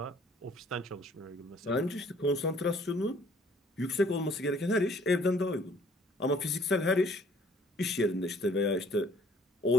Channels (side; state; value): both; normal; correlation 0.59